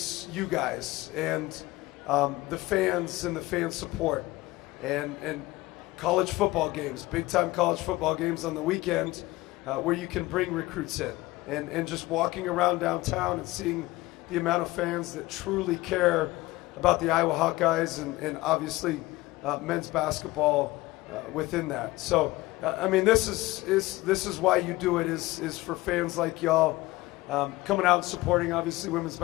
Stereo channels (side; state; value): right; quieter; 19.4 dB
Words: you guys and the fans and the fan support and college football games, big-time college football games on the weekend where you can bring recruits in. And just walking around downtown and seeing the amount of fans that truly care about the Iowa Hawkeyes and obviously men's basketball within that. So, this is why you do it, is for fans like y'all coming out and supporting, obviously, women's